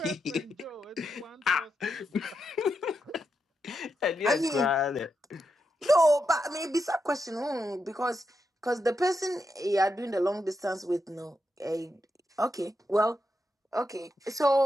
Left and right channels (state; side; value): normal; both; correlation 0.85